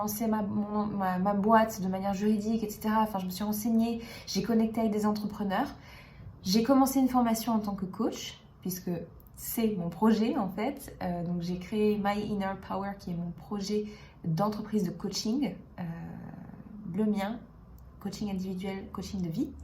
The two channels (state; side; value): identical; both; correlation 1.00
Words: ma boîte de manière juridique, etc. Enfin, je me suis renseignée, j'ai connecté avec des entrepreneurs. J'ai commencé une formation en tant que coach, puisque c'est mon projet en fait. Donc j'ai créé My Inner Power, qui est mon projet d'entreprise de coaching, le mien, coaching individuel, coaching de vie.